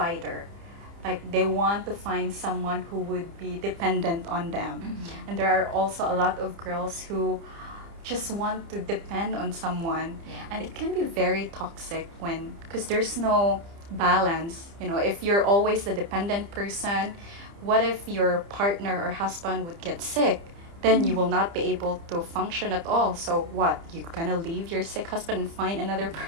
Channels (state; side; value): late; left; 30 ms